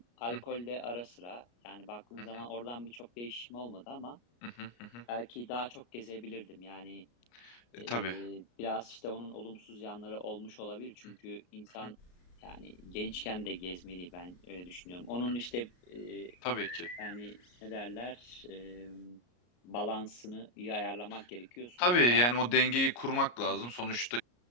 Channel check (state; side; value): late; right; 33 ms